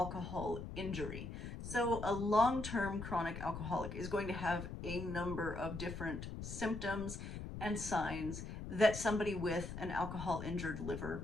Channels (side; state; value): left; noise; rumble, 7 dB below the sound